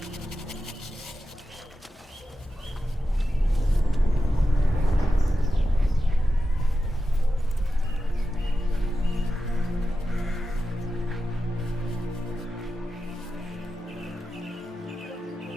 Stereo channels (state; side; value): normal; both; correlation 0.91